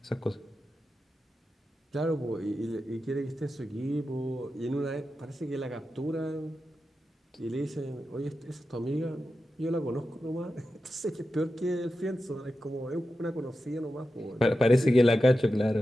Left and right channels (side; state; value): both; normal; correlation 0.91